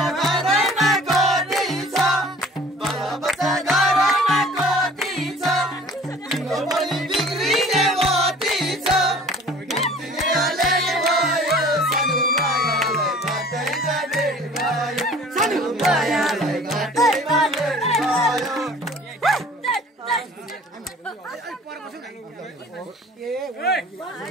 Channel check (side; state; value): both; normal; correlation 0.48